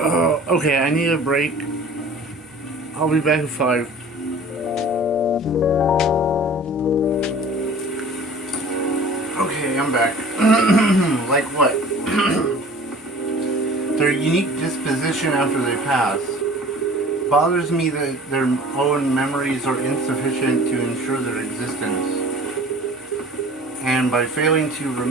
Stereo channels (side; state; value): both; normal; correlation 0.45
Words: I need a break. I'll be back in 5. Okay, I'm back. Like what? Their unique disposition after they pass. Bothers me that their own memories are insufficient to ensure their existence. And by failing to